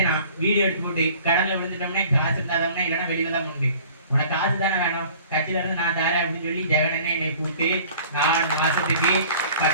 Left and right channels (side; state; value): both; inverted; correlation -0.49